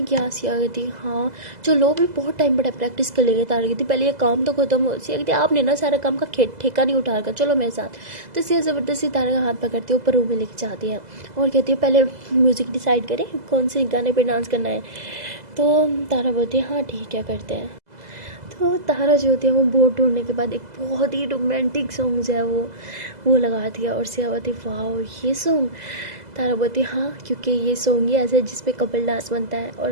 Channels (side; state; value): left; late; 2.0 ms